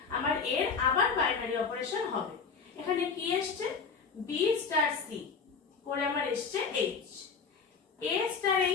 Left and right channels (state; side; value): quieter; right; 5.4 dB